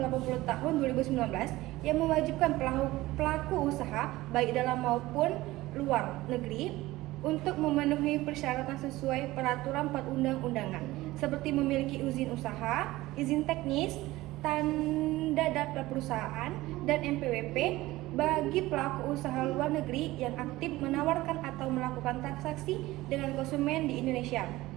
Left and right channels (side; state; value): left; quieter; 18.1 dB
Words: 80 tahun 2019 yang mewajibkan pelaku usaha baik dalam maupun luar negeri untuk memenuhi persyaratan sesuai peraturan perundang-undangan, seperti memiliki izin usaha, izin teknis, tanda daftar perusahaan, dan NPWP bagi pelaku usaha luar negeri yang aktif menawarkan atau melakukan transaksi dengan konsumen di Indonesia,